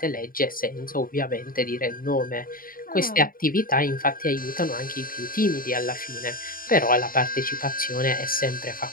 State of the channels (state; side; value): late; right; 0.41 ms